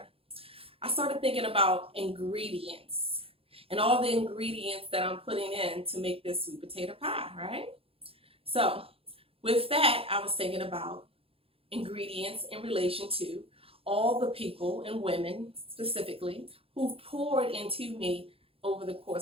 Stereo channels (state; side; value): late; left; 0.27 ms